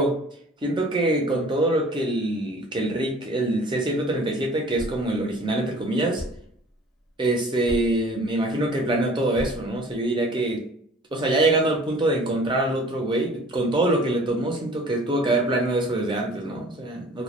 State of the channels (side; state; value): both; normal; correlation 0.48